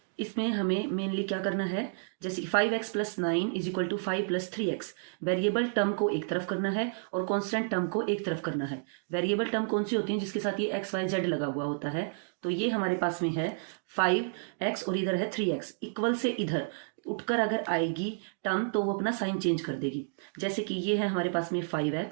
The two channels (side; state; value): left; silent; digital silence